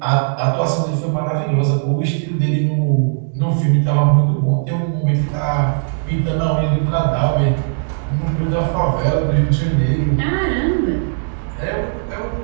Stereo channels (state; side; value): silent; left; digital silence